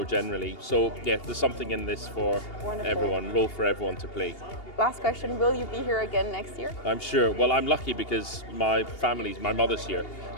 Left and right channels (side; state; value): right; late; 2.8 ms